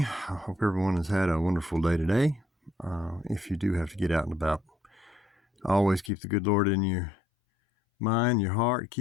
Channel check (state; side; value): drops out; right; at 6.1 s